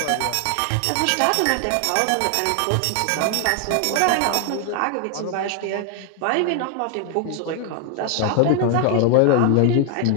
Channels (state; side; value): different; both; correlation 0.00